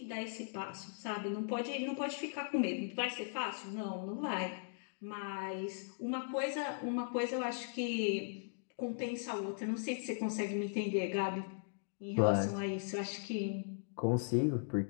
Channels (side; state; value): right; silent; digital silence